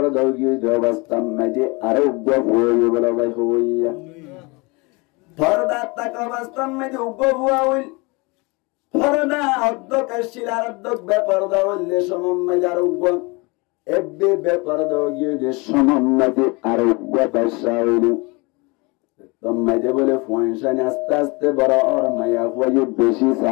দাও গিয়ে অবস্থা মেজে আরো গপ হয়ে বলা ভাই হইয়া পর্দা তাক অবস্থা মেজে উগ্র ভুয়া হইল পর্দা অর্ধক শিলার অর্ধক বেপর্দা হইলে সমম্মাজে আর উগ্র এব্বে বেপর্দা গিয়ে সমম্মাজে আর উগ্র ব্যবসা হইল তোমাজে বলে ফয়সানি আস্তে আস্তে বড় আর মায়া হয়ে বেশি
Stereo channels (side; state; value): right; quieter; 27.3 dB